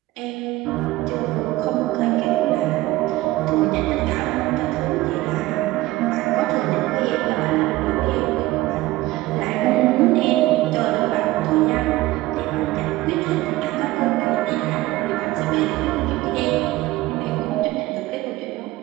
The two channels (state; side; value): quieter; left; 18.0 dB